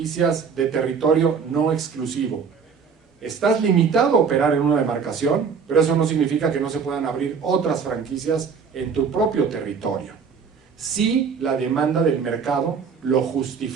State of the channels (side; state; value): left; quieter; 6.0 dB